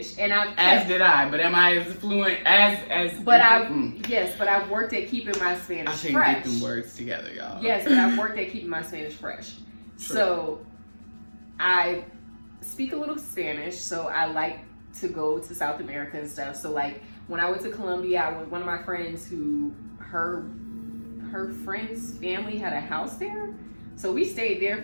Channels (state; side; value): inverted; both; correlation -1.00